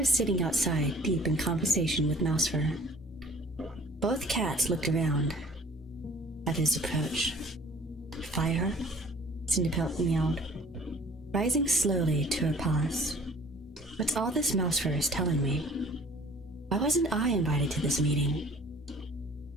sitting outside, deep in conversation with Mousefur. Both cats looked around at his approach. Fireheart? Cinderpelt meowed, rising slowly to her paws. What's all this Mousefur is telling me? Why wasn't I invited to this meeting?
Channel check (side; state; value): both; normal; correlation 0.51